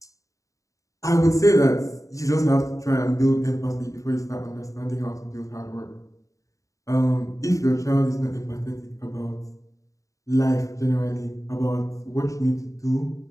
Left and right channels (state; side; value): late; right; 0.16 ms